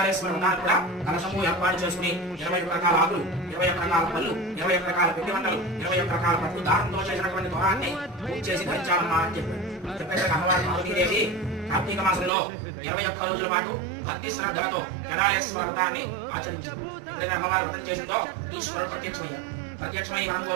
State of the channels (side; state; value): left; drops out; at 12.3 s